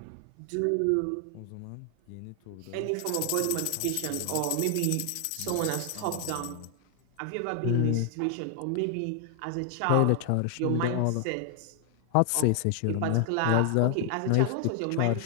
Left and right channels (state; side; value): different; both; correlation 0.00